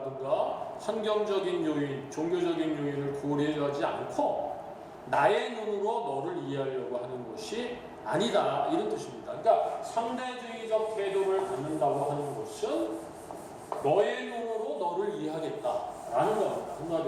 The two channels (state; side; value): identical; both; correlation 1.00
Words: 환경적인 요인, 종교적인 요인을 고려하지 않고 나의 눈으로 너를 이해하려고 하는 것이 아니다. 이런 뜻입니다. 그러니까 상대주의적 태도를 갖는다고 하는 것은 너의 눈으로 너를 이해하겠다라는 겁니다.